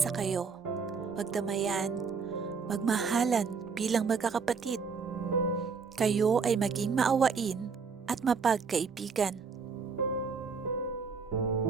kayo, magdamayan, magmahalan bilang magkakapatid. Kayo ay maging maawain at mapagkaibigan.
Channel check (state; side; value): quieter; left; 5.4 dB